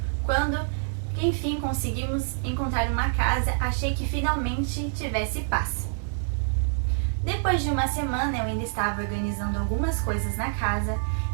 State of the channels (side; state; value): left; silent; digital silence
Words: quando enfim conseguimos encontrar uma casa, achei que finalmente tivesse paz. Depois de uma semana, eu ainda estava organizando algumas coisas na casa.